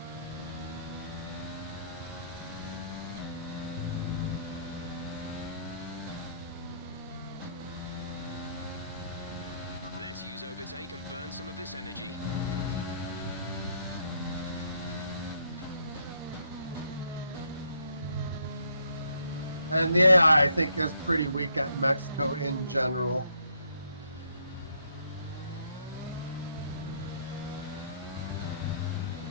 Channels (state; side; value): inverted; both; correlation -0.69